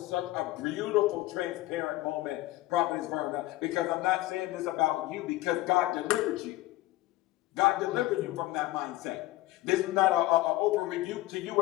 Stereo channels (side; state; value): right; quieter; 17.5 dB